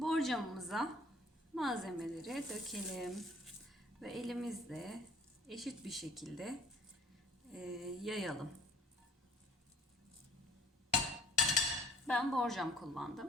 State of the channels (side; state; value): both; normal; correlation 0.55